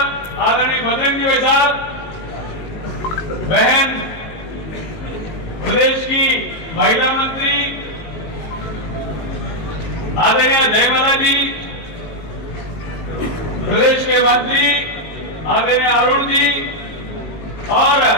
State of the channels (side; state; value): right; late; 19 ms